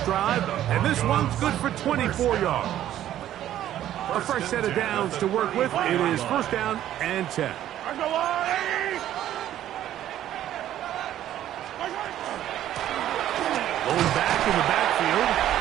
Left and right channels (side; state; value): left; quieter; 12.1 dB